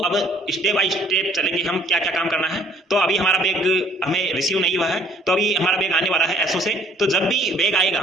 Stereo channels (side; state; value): both; normal; correlation 0.59